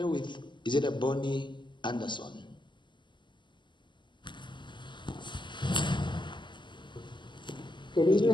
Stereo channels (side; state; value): right; late; 0.22 ms